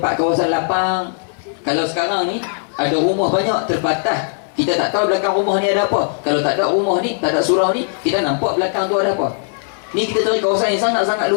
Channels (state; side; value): silent; right; digital silence